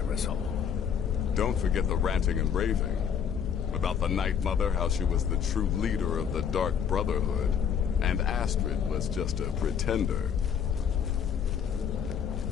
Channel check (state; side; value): quieter; right; 7.8 dB